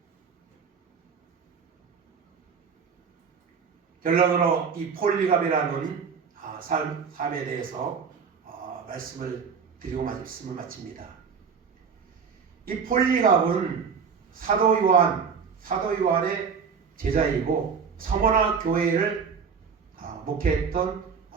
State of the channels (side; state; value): left; quieter; 6.1 dB